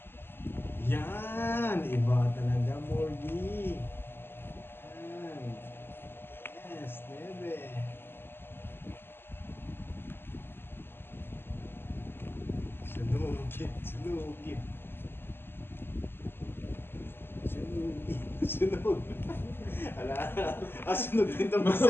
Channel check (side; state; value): right; late; 0.11 ms